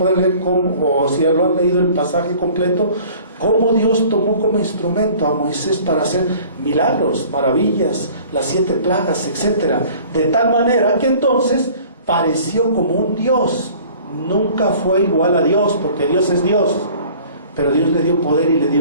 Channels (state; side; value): inverted; both; correlation -0.49